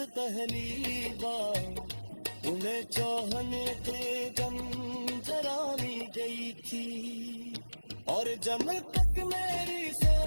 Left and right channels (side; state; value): both; inverted; correlation -1.00